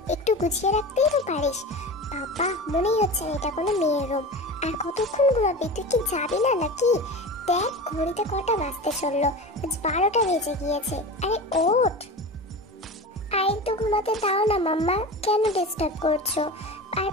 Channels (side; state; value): both; normal; correlation 0.30